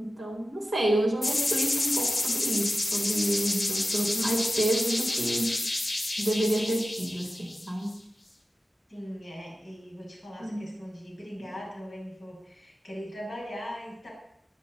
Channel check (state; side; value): normal; both; correlation 0.94